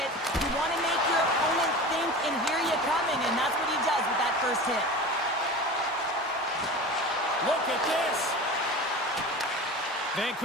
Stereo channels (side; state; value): both; normal; correlation 0.33